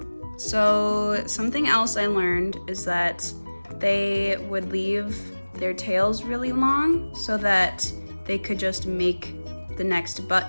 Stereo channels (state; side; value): inverted; both; correlation -1.00